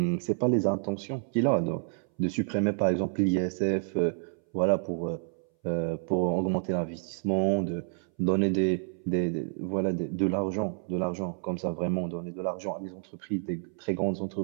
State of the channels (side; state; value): left; silent; 58 dB below the other